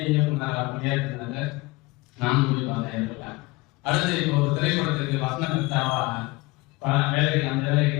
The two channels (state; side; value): quieter; right; 22.5 dB